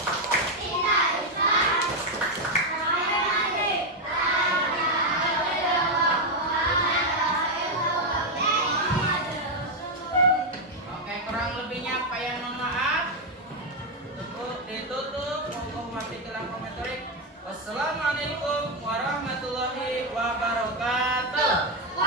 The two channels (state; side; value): normal; both; correlation 0.04